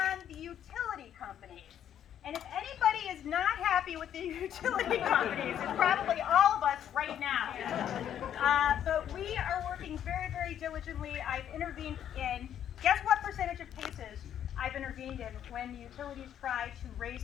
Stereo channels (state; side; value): quieter; right; 10.0 dB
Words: Utility companies. And if anybody is not happy with the utility companies, it's probably all of us right now. But we are working very, very diligently. I've intervened in, guess what percentage of cases I've intervened in when utilities try to raise